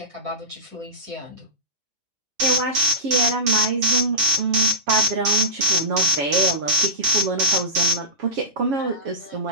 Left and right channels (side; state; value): left; late; 7.4 ms